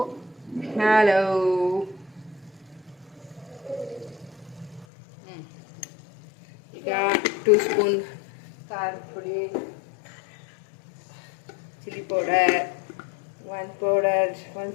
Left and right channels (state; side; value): drops out; right; at 4.9 s